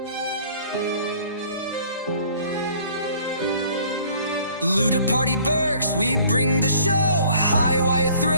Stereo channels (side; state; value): both; inverted; correlation -0.55